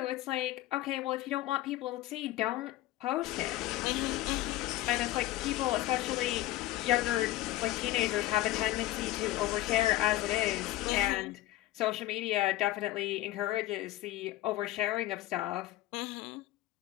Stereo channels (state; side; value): quieter; right; 16.0 dB